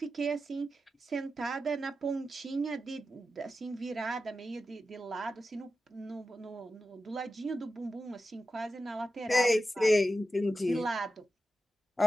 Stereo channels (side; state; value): both; normal; correlation 0.91